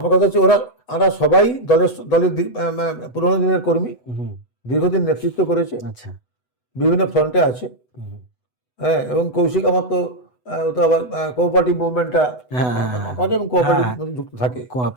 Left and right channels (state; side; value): late; right; 8.0 ms